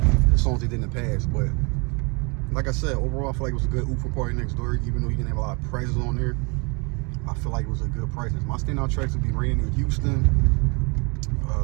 the songs they did in the past. But like I said, overall, I feel like it was a good oop for PARTYNEXTDOOR, even though he didn't have a lot of presence on there. I feel like it was a good presence. My standout tracks would be Raining in Houston,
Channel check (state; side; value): quieter; left; 31.5 dB